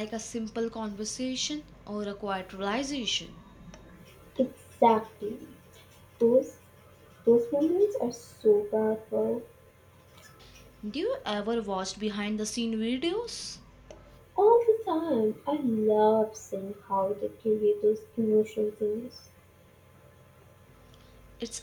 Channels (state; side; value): identical; both; correlation 1.00